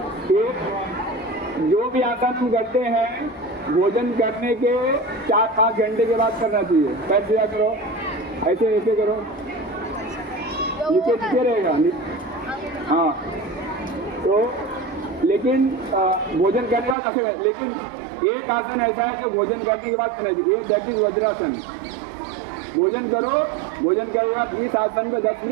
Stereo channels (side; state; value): left; drops out; at 16.9 s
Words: एक जो भी आसन हम करते हैं भोजन करने के 4-5 घंटे के बाद करना चाहिए। पैर सीधा करो, ऐसे ऐसे करो, नीचे रहेगा। हाँ, तो लेकिन भोजन करने का कैसे, लेकिन एक आसन ऐसा है जो भोजन करने के बाद करना चाहिए, दैट इज वज्रासन। भोजन करो, भोजन करने के बाद इस आसन को 10